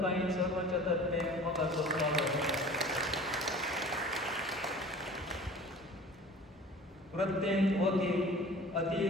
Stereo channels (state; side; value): normal; both; correlation 0.43